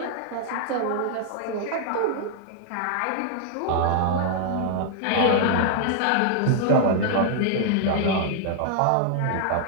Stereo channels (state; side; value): different; both; correlation 0.00